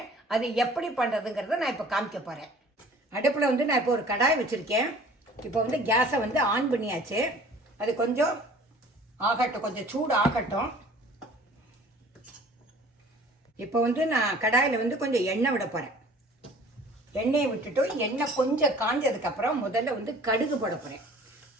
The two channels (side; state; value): both; normal; correlation 0.49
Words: அது எப்படி பண்ணுறதுங்கிறத நான் இப்போ காமிக்க போகிறேன். அடுப்பில் நான் இப்போ ஒரு கடாய் வச்சுருக்கேன். இப்போ கேஸை ஆன் பண்ணியாச்சு. அது கொஞ்சம் ஆகட்டும், கொஞ்சம் சூடு ஆகட்டும். இப்போ நான் கடாயில் கொஞ்சம் எண்ணெய் விட போகிறேன். எண்ணெயை விட்டுட்டு எண்ணெய் கொஞ்சம் காஞ்சதுக்கப்புறம் முதல்ல கடுகு போட போகிறேன்.